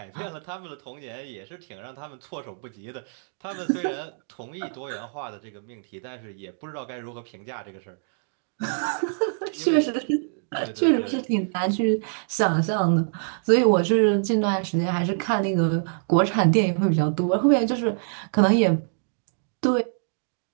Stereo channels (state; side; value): silent; left; digital silence